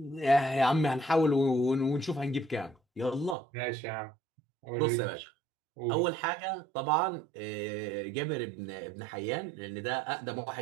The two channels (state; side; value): drops out; left; at 3.4 s